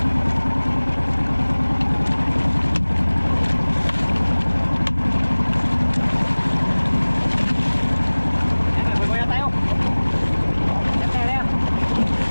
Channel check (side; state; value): both; inverted; correlation -1.00